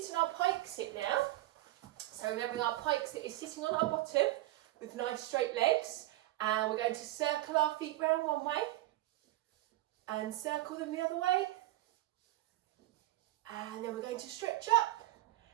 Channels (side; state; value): left; quieter; 17.1 dB